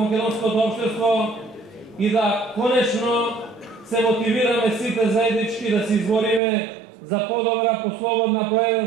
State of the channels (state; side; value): drops out; left; at 6.4 s